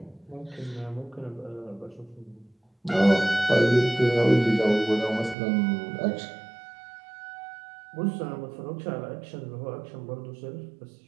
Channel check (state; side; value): drops out; left; at 5.4 s